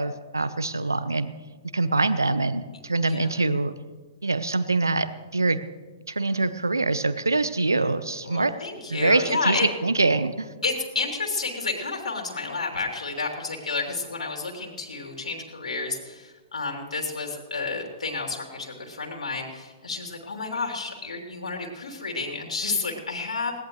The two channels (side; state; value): both; inverted; correlation -0.70